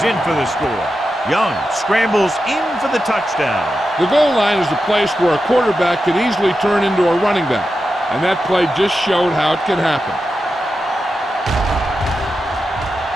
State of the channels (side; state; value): both; normal; correlation 0.90